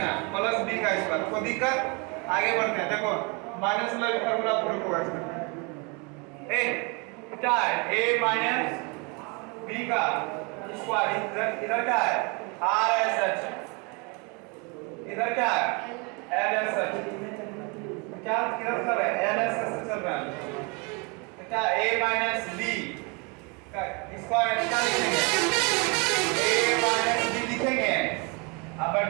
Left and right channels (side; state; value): left; quieter; 31.3 dB